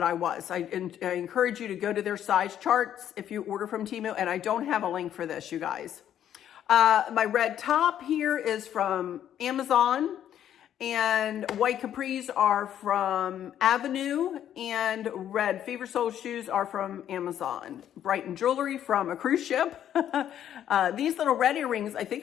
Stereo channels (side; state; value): right; quieter; 10.5 dB